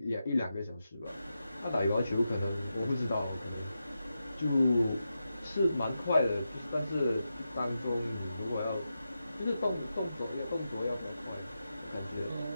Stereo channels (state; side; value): inverted; both; correlation -0.89